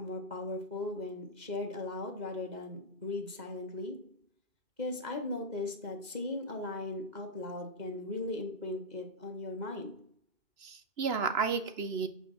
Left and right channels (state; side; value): late; left; 2.0 ms